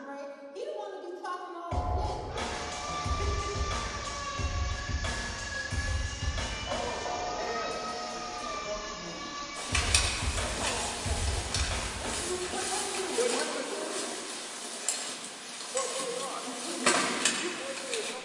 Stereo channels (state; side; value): identical; both; correlation 1.00